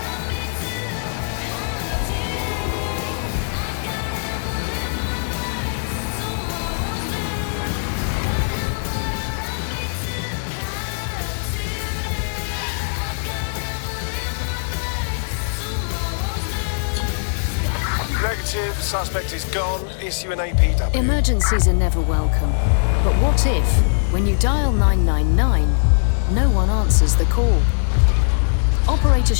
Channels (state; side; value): silent; right; digital silence